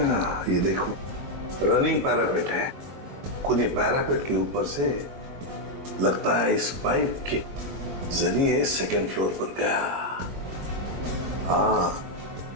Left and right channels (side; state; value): left; late; 21 ms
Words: ये देखो, रनिंग पैरापेट है। खूनी पैरापेट के ऊपर से लगता है इस पाइप के जरिए सेकंड फ्लोर पर गया। हाँ,